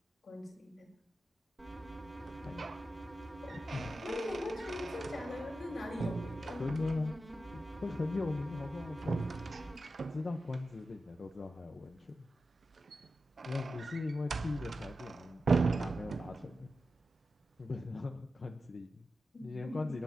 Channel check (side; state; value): both; normal; correlation 0.91